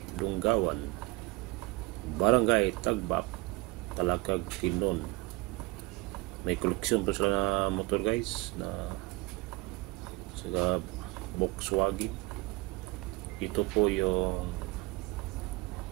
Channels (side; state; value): left; quieter; 23.3 dB